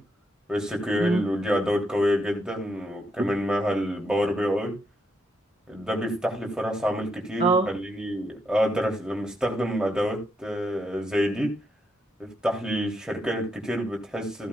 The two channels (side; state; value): both; normal; correlation 0.79